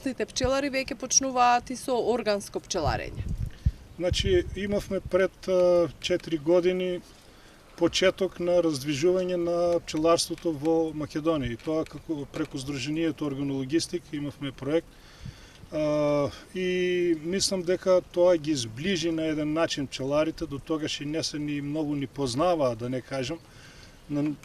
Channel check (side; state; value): both; identical; correlation 1.00